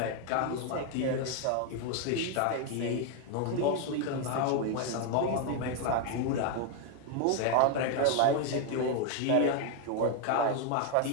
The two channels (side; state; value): both; different; correlation 0.01